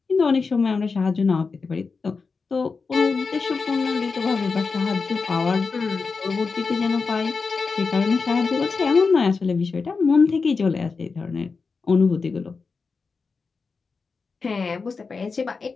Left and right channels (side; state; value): right; quieter; 4.7 dB